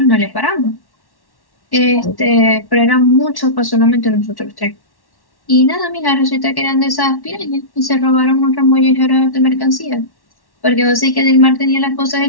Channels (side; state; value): right; late; 1.1 ms